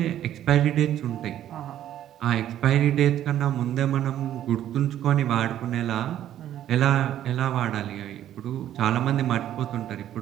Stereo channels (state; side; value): quieter; left; 11.6 dB